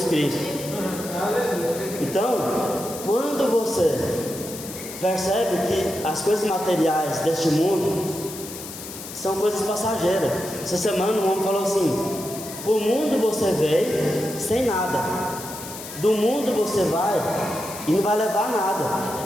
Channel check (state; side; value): noise; left; hiss, 11 dB below the sound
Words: Cristo. Então, quando você percebe que as coisas materiais deste mundo são coisas passageiras. Essa semana um homem falou assim: pro mundo você veio sem nada, do mundo você vai e não vai levar